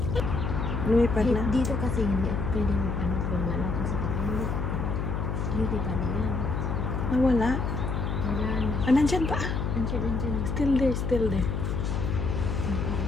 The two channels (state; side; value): noise; left; hum, 1 dB below the sound